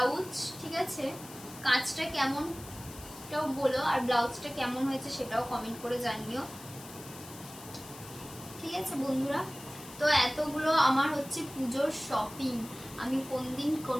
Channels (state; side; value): noise; left; hiss, 16 dB below the sound